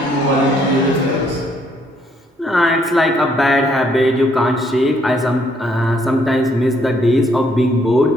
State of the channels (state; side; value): normal; both; correlation 0.68